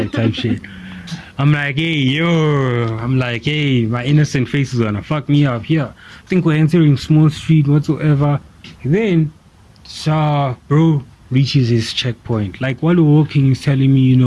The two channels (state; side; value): identical; both; correlation 1.00